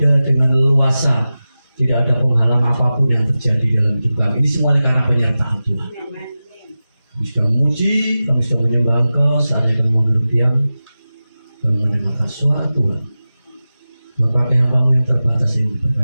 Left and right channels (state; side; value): inverted; both; correlation -0.95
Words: dengan leluasa. Tidak ada penghalang apapun yang terjadi dalam hidup kami. Ini semuanya karena penyertaan Tuhan. Kami sudah memuji, kami sudah menyembah Engkau. Saatnya kami mau berdiam dan mendengarkan suara Tuhan. Bapak hamba yang terbatas ini